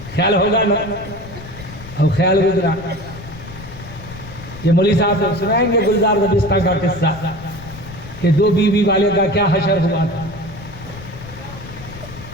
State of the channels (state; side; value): noise; left; rumble, 15 dB below the sound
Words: خیال ہوگا نا. اب خیال گزرا. یہ مولوی صاحب سے سنائیں گے گلزار دبستہ کا قصہ کہ 2 بیوی والے کا کیا حشر ہوا تھا.